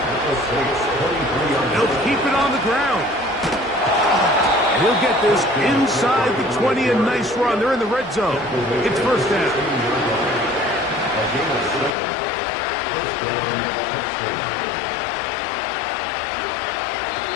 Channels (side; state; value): right; drops out; at 11.9 s